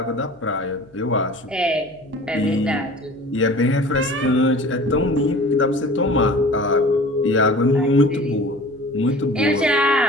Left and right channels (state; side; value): noise; left; hum, 29 dB below the sound